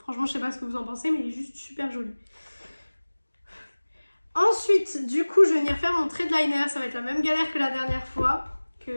je sais pas ce que vous en pensez, mais il est juste super joli. Ensuite, du coup, je vais venir faire mon trait de liner. Ça va être la même galère que la dernière fois,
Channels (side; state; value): both; inverted; correlation -1.00